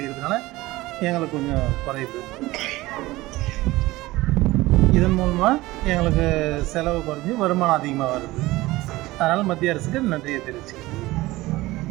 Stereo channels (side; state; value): left; quieter; 19.0 dB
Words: எங்களுக்கு கொஞ்சம் குறையுது. இதன் மூலமாக எங்களுக்கு செலவு குறைஞ்சி வருமானம் அதிகமாக வருது. அதனால் மத்திய அரசுக்கு நன்றியை தெரிவிச்சுக்கிறேன்.